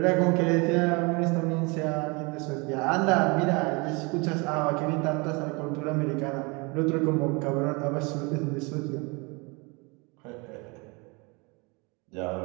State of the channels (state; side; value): quieter; left; 28.6 dB